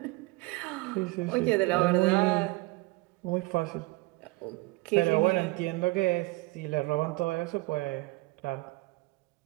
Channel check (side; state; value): left; quieter; 22.9 dB